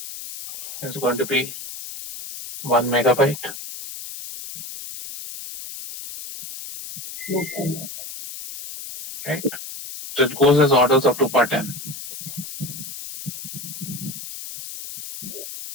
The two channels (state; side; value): noise; left; hiss, 11 dB below the sound